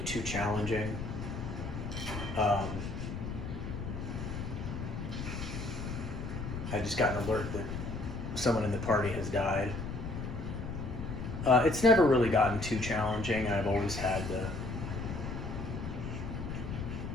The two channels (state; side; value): noise; left; rumble, 6 dB below the sound